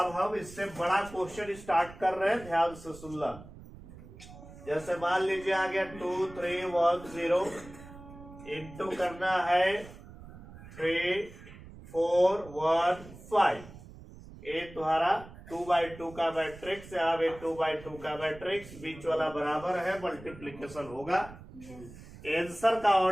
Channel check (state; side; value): noise; right; rumble, 17 dB below the sound